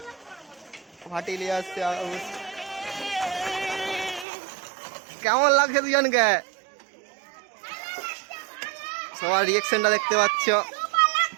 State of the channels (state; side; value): drops out; left; at 4.2 s